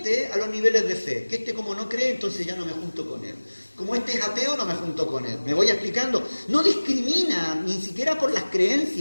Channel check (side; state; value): both; inverted; correlation -1.00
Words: a los niveles de fe. Que este como no cree, entonces ya no me junto con él. Como este es ateo, no me junto con él. Me voy explicando. No discrimina, ni siquiera por las